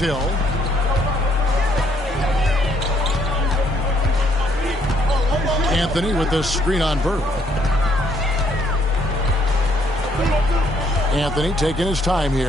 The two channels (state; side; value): normal; both; correlation 0.69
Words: Anthony with the screen on Bird. Anthony taking his time